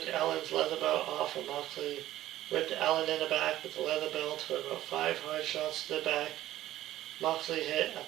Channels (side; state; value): left; quieter; 14.3 dB